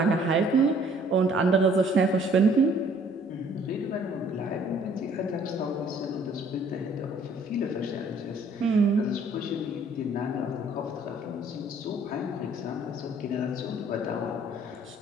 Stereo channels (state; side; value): normal; both; correlation 0.58